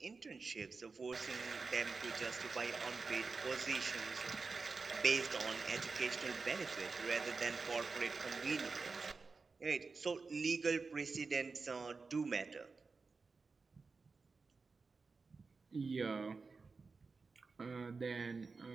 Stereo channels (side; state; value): left; quieter; 4.4 dB